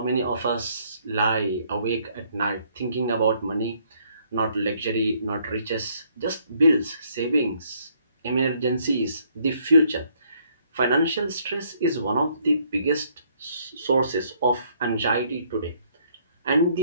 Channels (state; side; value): inverted; both; correlation -0.66